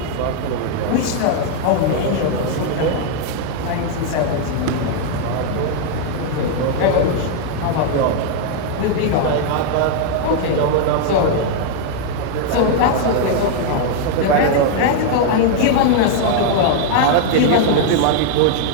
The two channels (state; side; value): different; both; correlation 0.00